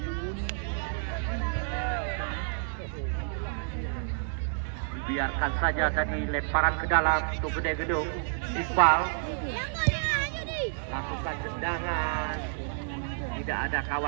Biarkan saja tadi lemparan ke dalam untuk gede gedung. Iqbal lakukan tendangan, tidak ada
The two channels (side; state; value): left; silent; digital silence